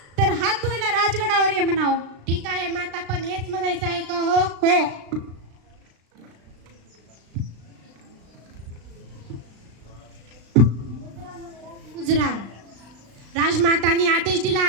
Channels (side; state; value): left; late; 36 ms